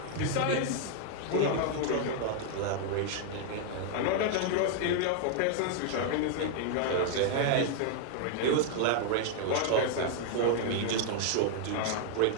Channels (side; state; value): both; different; correlation 0.00